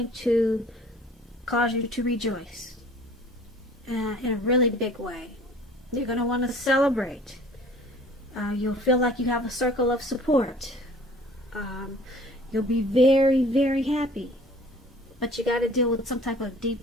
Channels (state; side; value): normal; both; correlation 0.50